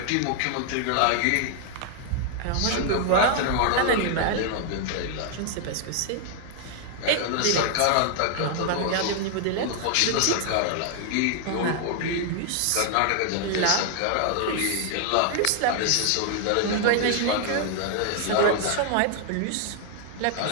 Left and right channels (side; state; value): both; different; correlation 0.00